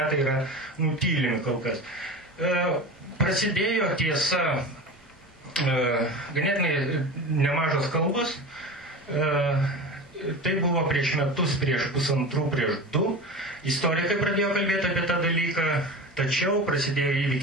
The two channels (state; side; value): normal; both; correlation 0.30